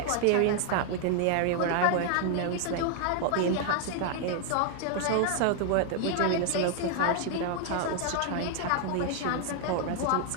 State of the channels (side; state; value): both; different; correlation 0.00